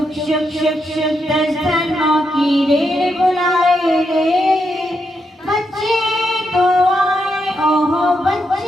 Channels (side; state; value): both; normal; correlation 0.82